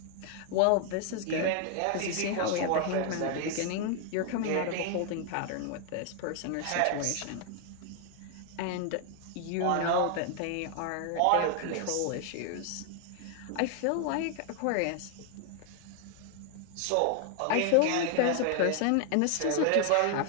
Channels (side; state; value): both; different; correlation 0.00